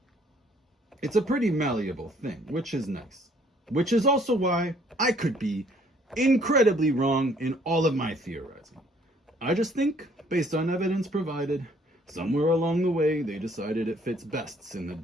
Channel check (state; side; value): normal; both; correlation 0.61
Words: It's a pretty malleable thing, which is nice. Which is also why I could be incredibly wrong in all of my theorizing. I just think, based on evidence provided, somewhere along the way they decided it fits best in the